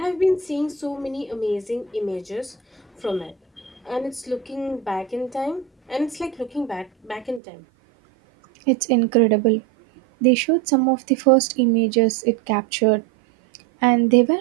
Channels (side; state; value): left; drops out; at 7.4 s